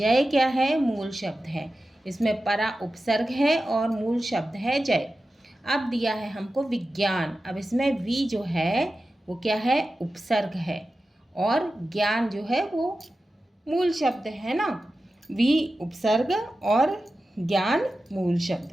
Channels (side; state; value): both; normal; correlation 0.93